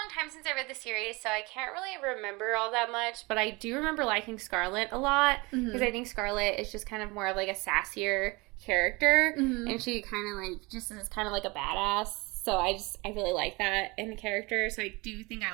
long time since I read the series, so I can't really remember all that much. But I do remember liking Scarlet a lot because I think Scarlet is just kind of more of like a sassier character, and she kind of like just is kind of like a badass. So I really like that in the character. So I do think I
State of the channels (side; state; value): left; quieter; 25.3 dB